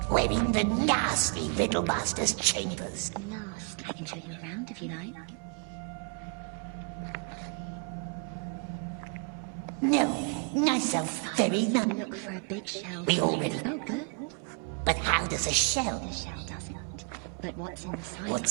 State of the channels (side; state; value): left; quieter; 39.7 dB